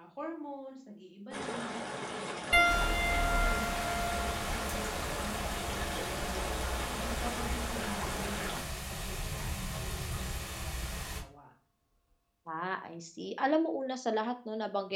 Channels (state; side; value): identical; both; correlation 1.00